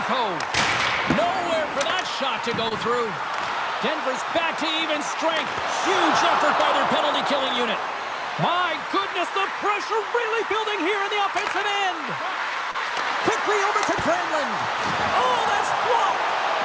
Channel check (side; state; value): both; identical; correlation 1.00